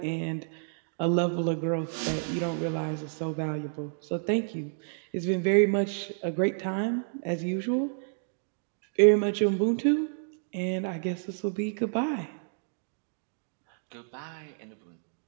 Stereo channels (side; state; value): left; silent; digital silence